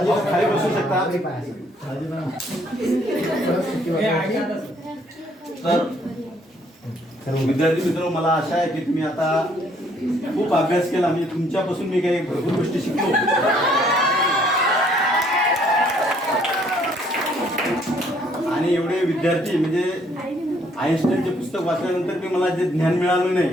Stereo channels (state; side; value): normal; both; correlation 0.65